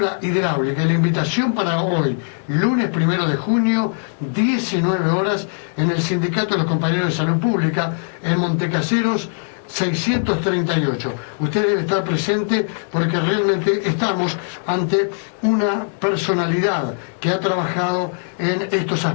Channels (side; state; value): right; silent; 65 dB below the other